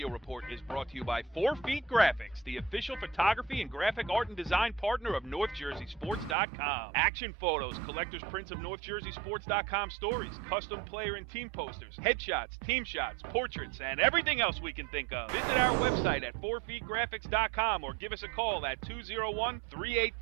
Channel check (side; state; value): left; drops out; at 6.4 s